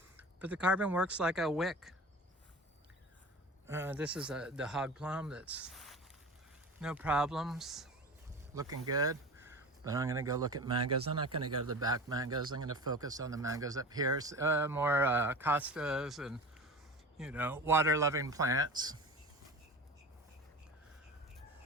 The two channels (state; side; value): normal; both; correlation 0.34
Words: but the carbon works like a wick. This is the hog plum that's no problems, looking good. But I'm going to go look at mangoes. I'm not going to go to the back mangoes. I'm going to focus on the mangoes up here. More costas and, you know, water-loving plants.